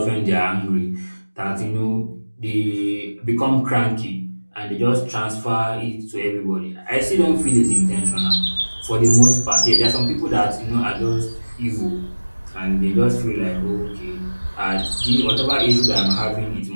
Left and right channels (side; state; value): both; inverted; correlation -1.00